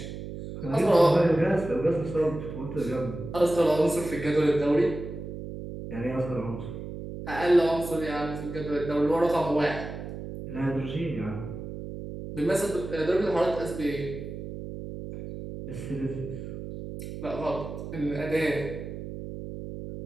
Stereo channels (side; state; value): right; noise; hum, 9 dB below the sound